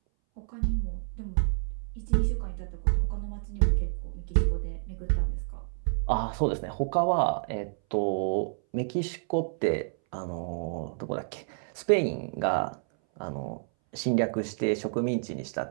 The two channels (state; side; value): silent; left; 58 dB below the other